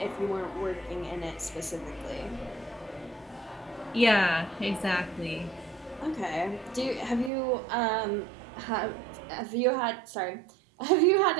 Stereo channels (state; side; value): drops out; left; at 7.3 s